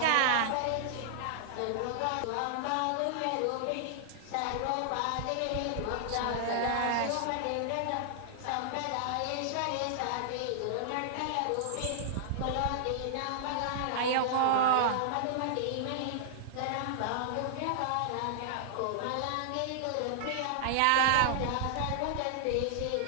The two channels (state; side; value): different; both; correlation -0.01